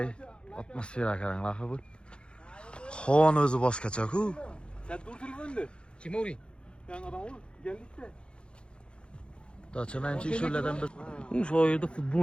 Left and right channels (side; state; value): right; late; 0.055 ms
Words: atmosfera qaranglar bu. Xon o'zi boshqacha-ku. Sen dur telefonda. Kim o'ring? Yan adam ol, geldikda. Dacha menchi shulardan bir Shu yerda